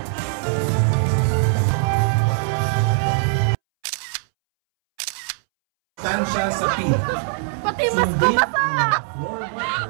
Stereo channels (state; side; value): silent; left; 65 dB below the other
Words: Tansya sa team. Pati mas ko basa!